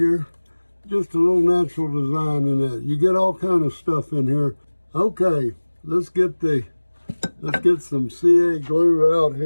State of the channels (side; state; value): both; inverted; correlation -1.00